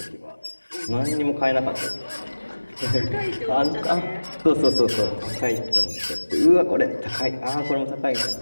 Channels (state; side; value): inverted; both; correlation -1.00